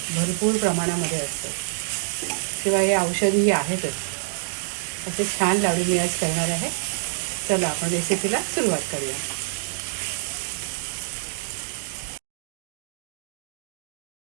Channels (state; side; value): silent; left; digital silence